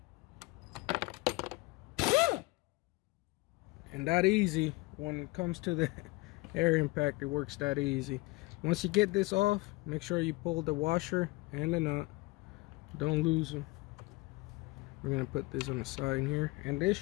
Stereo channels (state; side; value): quieter; right; 23.1 dB